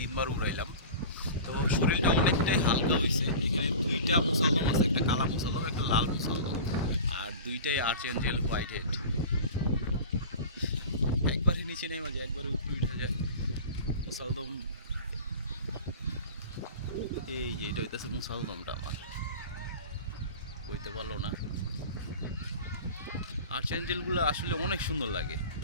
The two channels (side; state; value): both; inverted; correlation -0.35